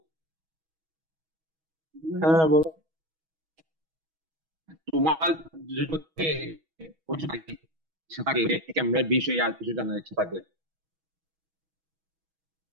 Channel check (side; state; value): left; late; 6.2 ms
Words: হ্যাঁ বলো। তোমার যদি ইচ্ছা থাকে ক্যামেরার বিষয়ে আর কিছু জানার ইচ্ছা থাকলে।